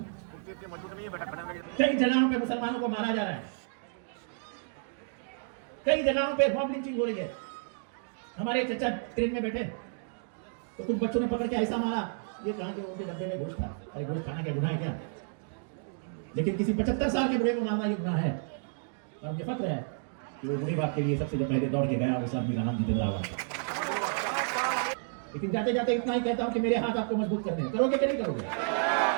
कई जगहों पे मुसलमानों को मारा जा रहा है, कई जगहों पे मॉब लिंचिंग हो रही है। हमारे चचा ट्रेन में बैठे तो कुछ बच्चों ने पकड़ के ऐसा मारा, ये कहा कि उनके डब्बे में गोश्त था। अरे गोश्त खाना क्या गुनाह है क्या? लेकिन किसी 75 साल के बूढ़े को मारना ये गुनाह है। और मुझे फक्र है कि वो मुनि बाप के लिए सबसे जो पहले दौड़ के गया उस आदमी का नाम जितेंद्र आह्वान था। लेकिन जाते जाते इतना ही कहता हूँ कि मेरे हाथ आपको मजबूत करने हैं, करोगे कि नहीं करोगे?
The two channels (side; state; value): left; silent; digital silence